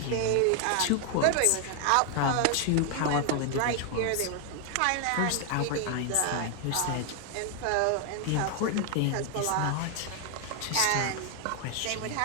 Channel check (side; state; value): both; different; correlation 0.00